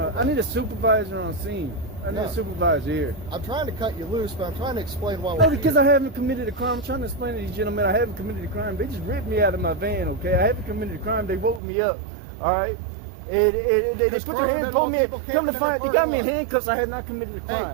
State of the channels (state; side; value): drops out; left; at 11.6 s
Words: I need a supervisor on scene. I need No. a supervisor here. I'm trying to cut you loose, but I'm trying to explain why we're No, because here. I haven't committed a crime. I'm trying to explain to these gentlemen I haven't committed a crime. They just ripped me out of my van, okay? I haven't committed a crime. They woke me up, all right? They This put crime their hands been on on me. people Come to camping in find, the they got me in parking lot. handcuffs. I had not committed a